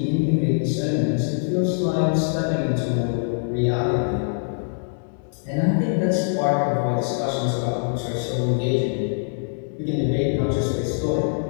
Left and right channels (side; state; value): right; silent; digital silence